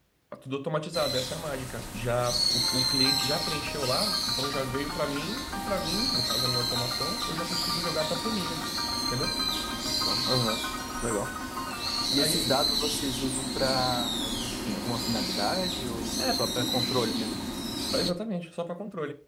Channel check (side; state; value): both; identical; correlation 1.00